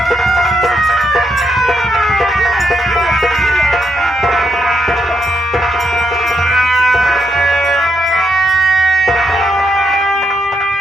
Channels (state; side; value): normal; both; correlation 0.79